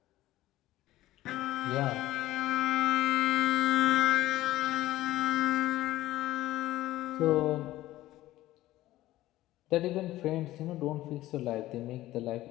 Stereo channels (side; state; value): right; quieter; 15.8 dB